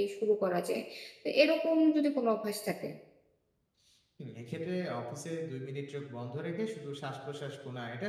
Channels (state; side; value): identical; both; correlation 1.00